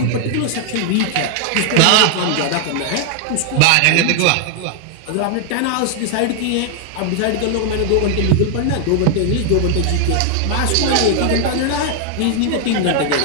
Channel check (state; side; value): different; both; correlation 0.00